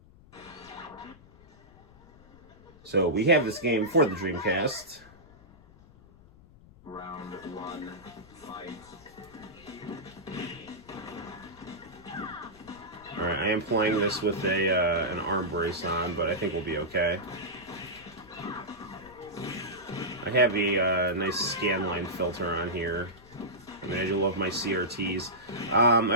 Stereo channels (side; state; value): left; noise; rumble, 24 dB below the sound